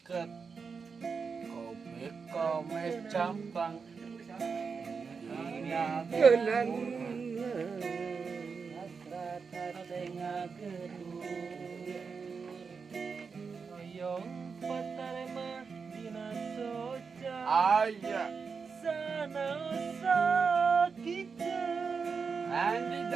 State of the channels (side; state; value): left; quieter; 5.4 dB